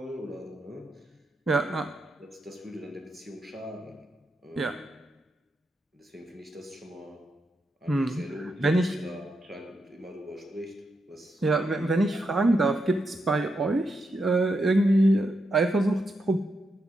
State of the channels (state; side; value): normal; both; correlation 0.84